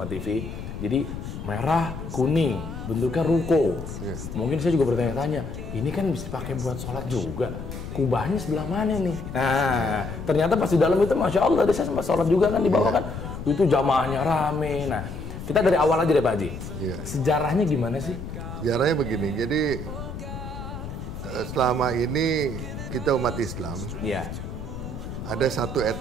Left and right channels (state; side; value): noise; left; rumble, 9 dB below the sound